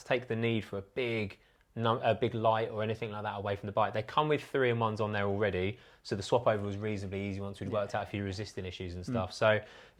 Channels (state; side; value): identical; both; correlation 1.00